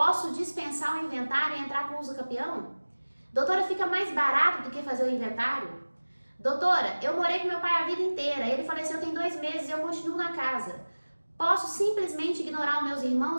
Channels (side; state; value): both; inverted; correlation -1.00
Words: dispensar o inventário e entrar com o uso capião? Doutora, fica mais barato do que fazer o inventário? Doutora, eu morei com meu pai a vida inteira, ele faleceu tem 2 meses e eu continuo na casa. Posso simplesmente ignorar os meus